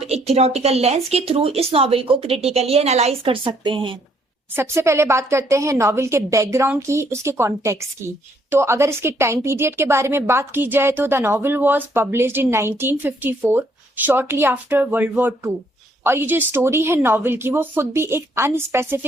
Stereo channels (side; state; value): both; normal; correlation 0.68